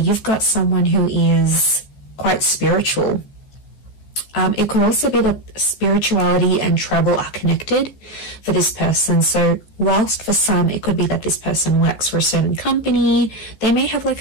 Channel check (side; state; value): right; late; 14 ms